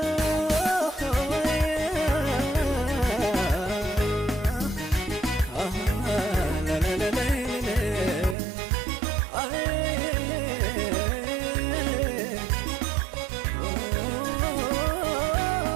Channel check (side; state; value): left; drops out; at 8.3 s